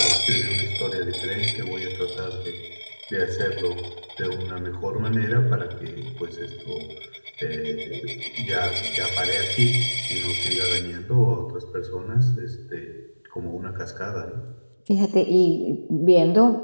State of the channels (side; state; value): both; inverted; correlation -1.00